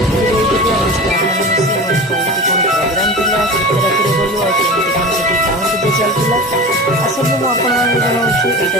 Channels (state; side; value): normal; both; correlation 0.32